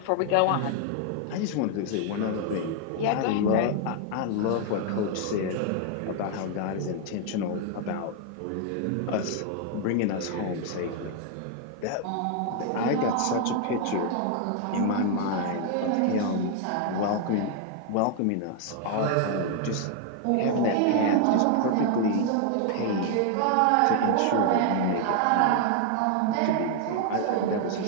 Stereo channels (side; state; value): both; different; correlation 0.00